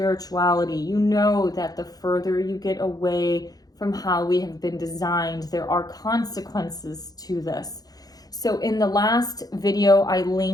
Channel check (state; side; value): late; right; 0.18 ms